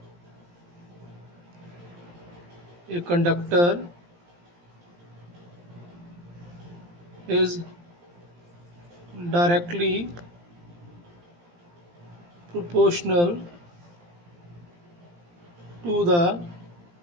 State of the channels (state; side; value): late; left; 17 ms